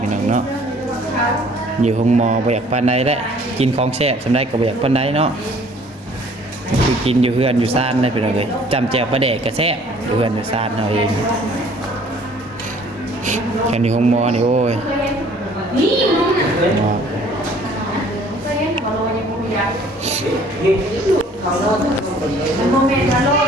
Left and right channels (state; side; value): normal; both; correlation 0.55